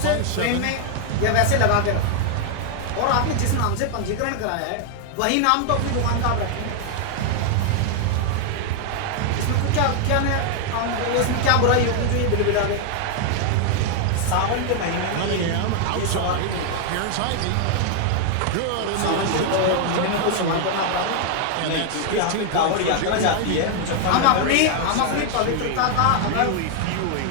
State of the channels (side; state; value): both; different; correlation 0.00